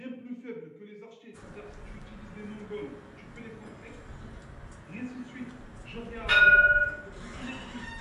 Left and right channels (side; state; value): both; identical; correlation 1.00